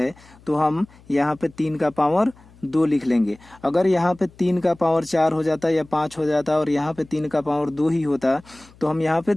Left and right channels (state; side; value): noise; left; hum, 26 dB below the sound